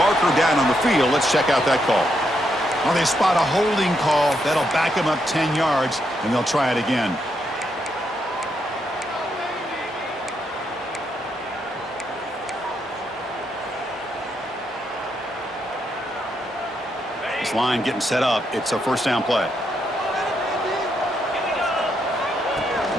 down on the field. Let's check out that call. Well, they spot a holding call. That'll back them up 10 yards, and they'll try it again. This line getting set up. It's a first down play.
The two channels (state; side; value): normal; both; correlation 0.79